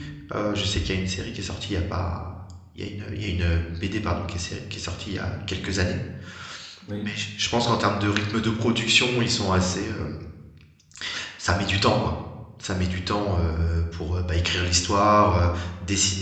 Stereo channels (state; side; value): identical; both; correlation 1.00